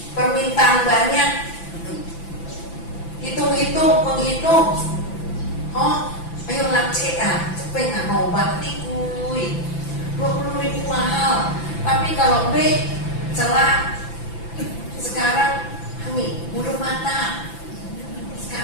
permintaan banyak, menghitung. Ayo lah cepet nggak mau obat nih kuy, 20.000 mahal. Tapi kalau B celah sekarang kami bulu mata,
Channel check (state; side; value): late; right; 5.9 ms